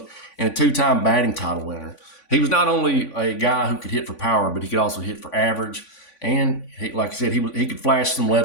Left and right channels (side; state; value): right; late; 3.5 ms